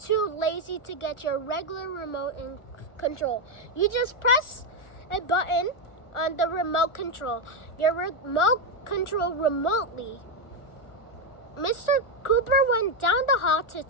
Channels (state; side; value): late; right; 1.4 ms